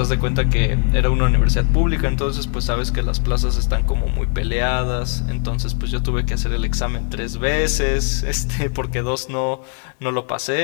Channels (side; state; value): right; quieter; 39.3 dB